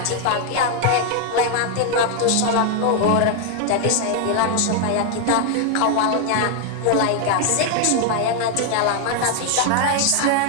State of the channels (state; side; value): different; both; correlation 0.00